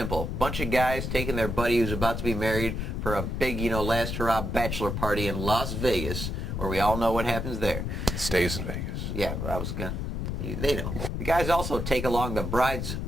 A bunch of guys taking their buddy who's about to be married for a big, last hurrah bachelor party in Las Vegas, where we all know what happens there. Stays in Vegas. Yeah, they know. The guys also take along the bride's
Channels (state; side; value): noise; left; rumble, 3 dB below the sound